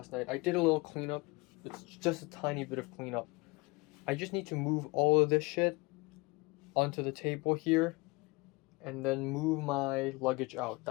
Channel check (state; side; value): quieter; right; 25.4 dB